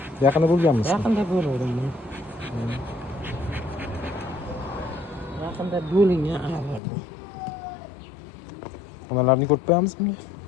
Yaqinda bo'lganmisiz? Yaqinda bo'ldim men. Yaqinda bo'lingan arlar bu. Onalarni ko'rib qo'yamizmi?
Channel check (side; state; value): right; drops out; at 6.8 s